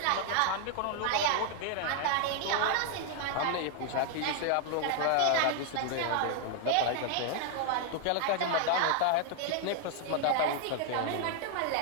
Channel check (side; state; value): both; different; correlation 0.00